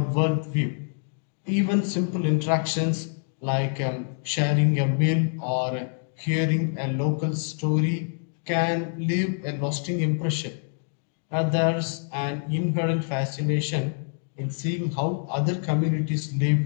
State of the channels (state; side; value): silent; right; 61 dB below the other